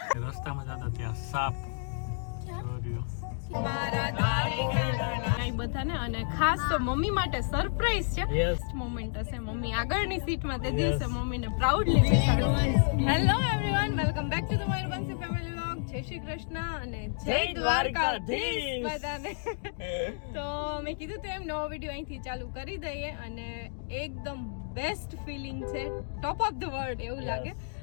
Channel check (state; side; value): silent; right; digital silence